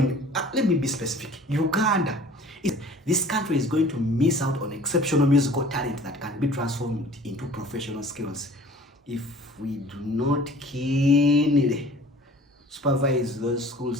let me be specific, Uganda. This country is going to miss out on exceptional musical talent that can be transformed into professional skills if we do not keenly supervise those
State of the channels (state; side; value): normal; both; correlation 0.48